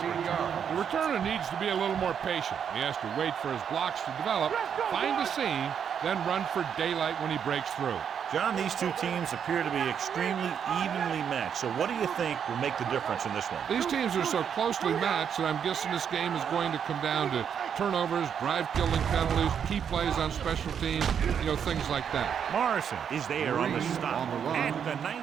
return. The returner needs to be a little more patient. He has to wait for his blocks to develop, find a seam, then run for daylight when he breaks through. John, these two teams appear to be extremely evenly matched. So what do you think will make the difference in this one? These teams are so closely matched that I'm guessing this game is going to come down to turnovers, drive-killing penalties, key plays on special teams, things like that. Morrison is there on the stop at the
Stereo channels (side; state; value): left; quieter; 7.8 dB